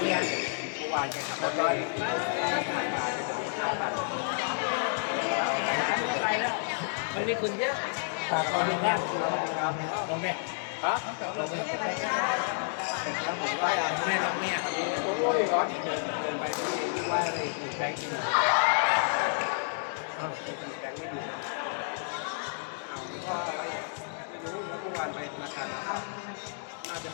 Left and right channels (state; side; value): silent; right; digital silence